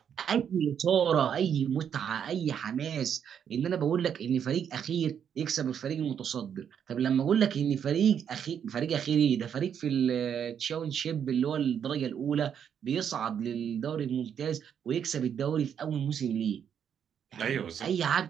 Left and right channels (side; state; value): left; quieter; 8.3 dB